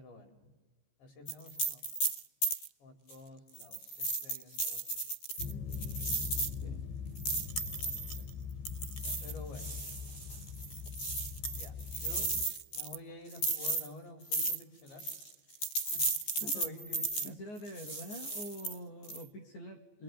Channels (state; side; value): late; right; 14 ms